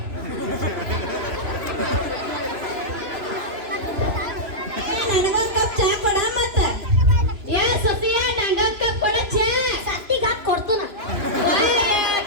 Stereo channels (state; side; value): late; left; 3.0 ms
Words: ನನಗೊಂದ್ ಕಪ್ ಚಾ ಕೊಡ ಮತ್ತ ಏ ಸತಿಯ ನಂಗೊಂದ್ ಕಪ್ ಕೊಡ ಚಾ ಸತ್ತಿಗ ಕೊಡ್ತಾನ